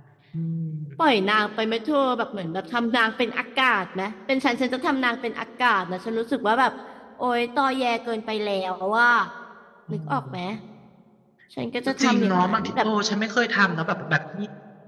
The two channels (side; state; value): both; identical; correlation 1.00